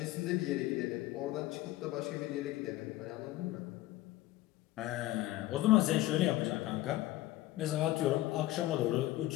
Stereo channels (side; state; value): right; quieter; 16.6 dB